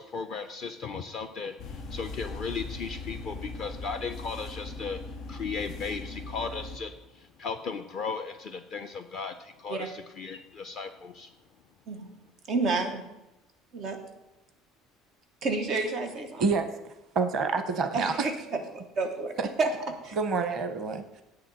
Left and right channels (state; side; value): normal; both; correlation 0.46